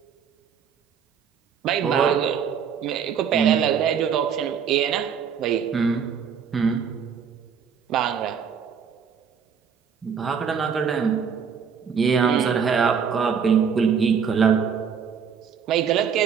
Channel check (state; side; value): quieter; left; 7.0 dB